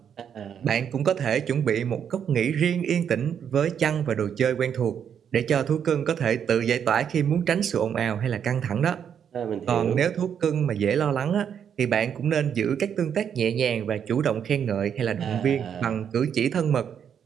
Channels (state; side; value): quieter; left; 8.2 dB